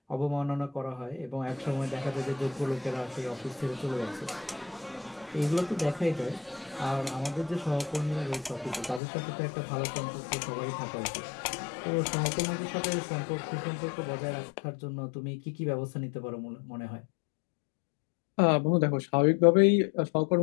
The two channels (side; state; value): right; drops out; at 9.0 s